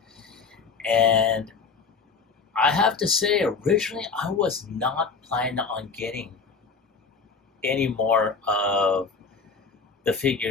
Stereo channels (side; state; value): right; quieter; 5.0 dB